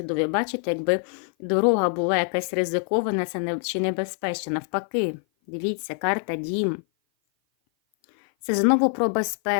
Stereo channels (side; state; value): right; silent; 56 dB below the other